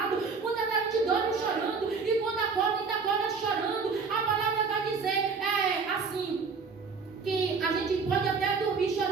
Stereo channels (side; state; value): left; quieter; 5.0 dB